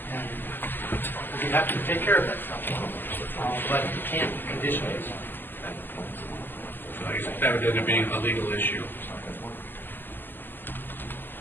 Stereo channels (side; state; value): right; late; 0.093 ms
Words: and we have to take care of that stuff. But you can't condition it. So I guess that would end up being a legal issue.